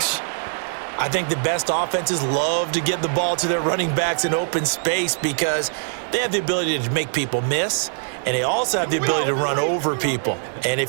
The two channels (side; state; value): left; silent; digital silence